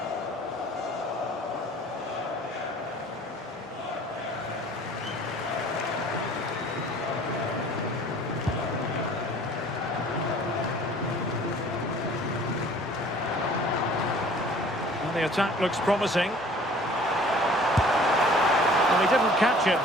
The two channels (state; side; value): normal; both; correlation 0.50